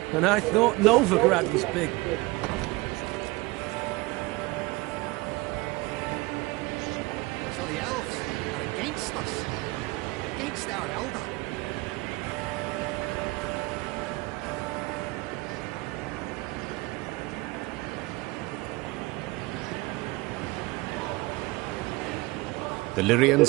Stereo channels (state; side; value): quieter; left; 22.4 dB